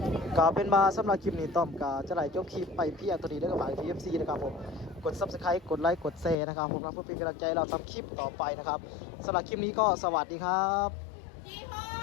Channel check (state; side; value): drops out; right; at 6.4 s